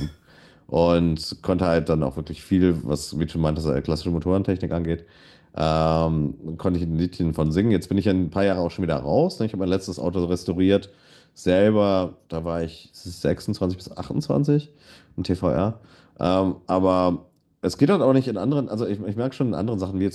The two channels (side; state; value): both; identical; correlation 1.00